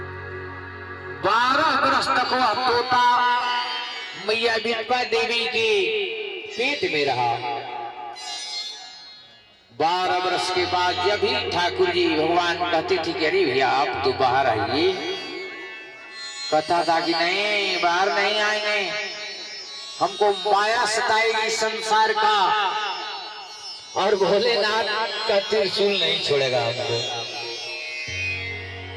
12 वर्ष तक वह तोता मैया विधवा देवी के पेट में रहा। 12 वर्ष के बाद जब ही ठाकुर जी भगवान कहते थे कि अरे भैया आप तो बाहर आइए, कथा था कि नहीं बाहर नहीं आएंगे, हमको माया सताएगी संसार का, और भोलेनाथ का त्रिशूल नहीं छोड़ेगा हमको।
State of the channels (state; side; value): identical; both; correlation 1.00